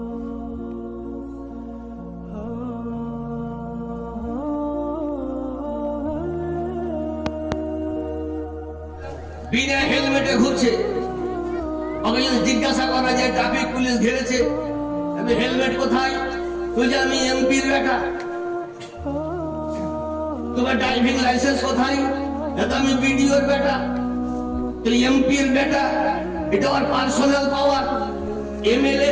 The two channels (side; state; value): both; identical; correlation 1.00